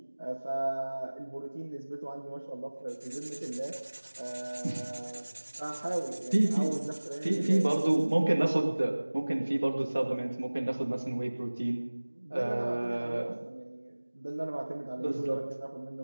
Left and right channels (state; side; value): inverted; both; correlation -1.00